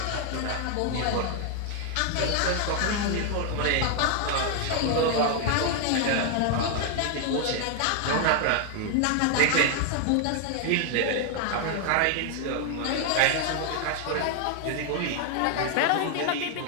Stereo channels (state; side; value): different; both; correlation 0.00